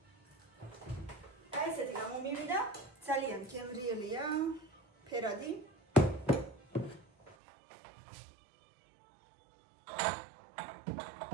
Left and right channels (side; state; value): left; drops out; at 7.4 s